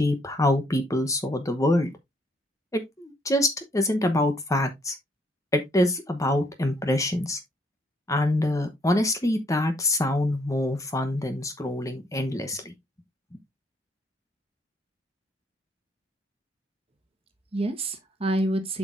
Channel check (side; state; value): both; normal; correlation 0.69